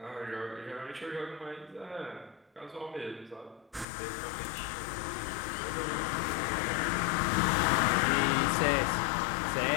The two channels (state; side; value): drops out; right; at 3.9 s